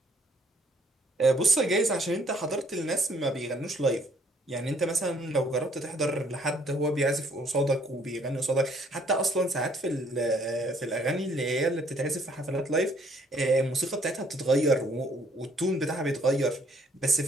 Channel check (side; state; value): both; normal; correlation 0.63